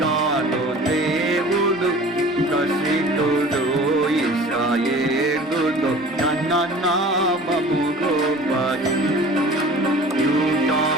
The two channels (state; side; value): normal; both; correlation 0.43